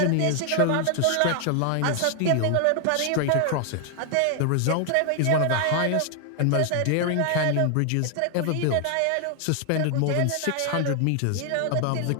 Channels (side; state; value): both; different; correlation 0.00